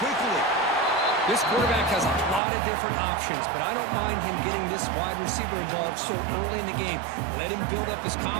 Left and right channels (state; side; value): drops out; left; at 2.4 s